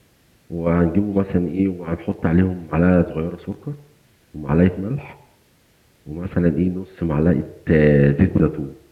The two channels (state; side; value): identical; both; correlation 1.00